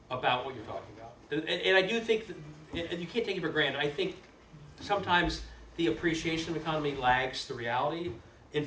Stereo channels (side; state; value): both; identical; correlation 1.00